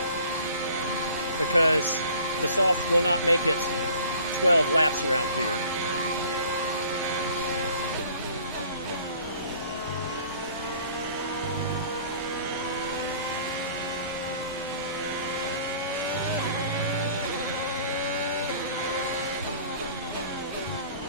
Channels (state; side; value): inverted; both; correlation -0.51